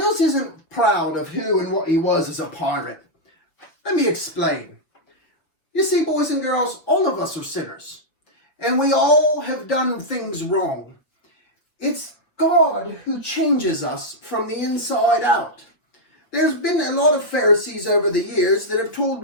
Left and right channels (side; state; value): right; late; 6.0 ms